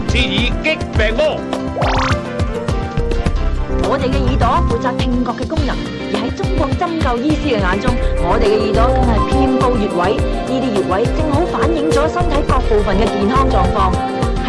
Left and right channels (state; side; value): identical; both; correlation 1.00